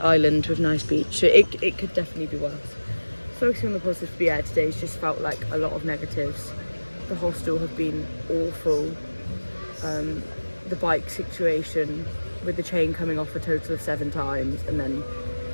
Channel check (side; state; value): both; inverted; correlation -1.00